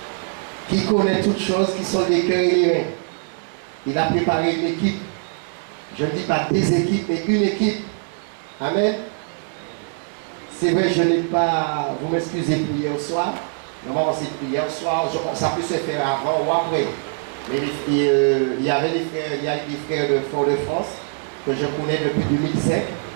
qui connaît toutes choses, qui sont des cœurs et les reins, il a préparé une équipe. Je ne dis pas des équipes, mais une équipe. Amen. C'est vrai, je n'ai pas, vous m'excusez pour hier soir. Normalement, c'est hier soir, ça peut se faire avant ou après. Mais il y avait des frères, il y a des frères de Fort-de-France que je connais depuis 2005.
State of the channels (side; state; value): left; silent; digital silence